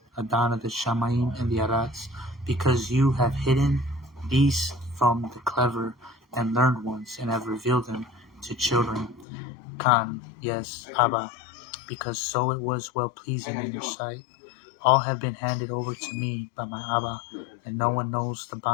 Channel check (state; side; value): drops out; right; at 9.2 s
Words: Adan of the Shamayim and the Arats, because you have hidden these from the clever and learned ones, and have revealed them to children. Khan, yes, Abba, because so it was well pleasing in your sight. All have been handed over to me by my Abba, and no one knows the